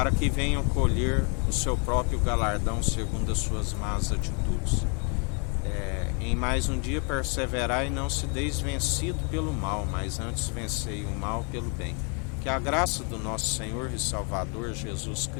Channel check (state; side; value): quieter; right; 37.4 dB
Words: que venham colher o seu próprio galardão segundo as suas más atitudes. Em mais um dia perseverai e não se deis vencido pelo mal, mas antes vencei o mal pelo bem. Que a graça do nosso Senhor e Salvador Jesus